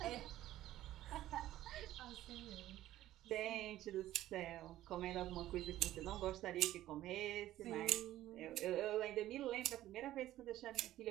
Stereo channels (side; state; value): left; quieter; 14.2 dB